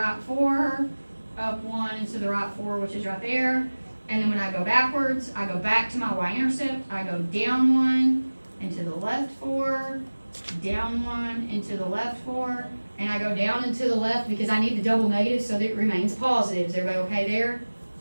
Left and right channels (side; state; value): both; inverted; correlation -1.00